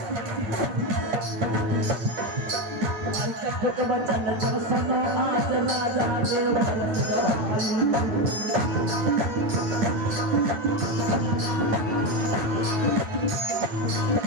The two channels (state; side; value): late; left; 9.3 ms